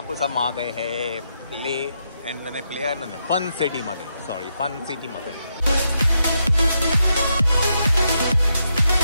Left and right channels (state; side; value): inverted; both; correlation -0.81